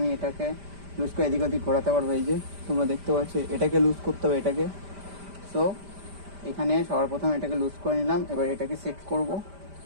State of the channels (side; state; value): left; late; 5.0 ms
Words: এটাকে লুজ করে এদিক ওদিক ঘোরাতে পারবো। এই যে তোমরা দেখতে পাচ্ছ, এটাকে লুজ করতে হবে এটাকে। সো এখানে সবার প্রথমে এটাকে লুজ করে নিলাম, এবার এটাকে সেট করব।